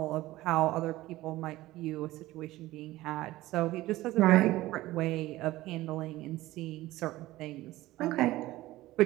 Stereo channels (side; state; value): left; quieter; 17.2 dB